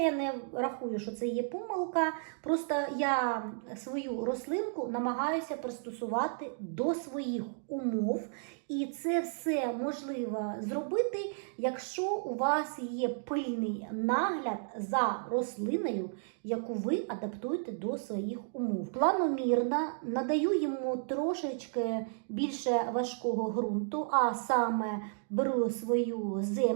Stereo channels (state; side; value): silent; left; digital silence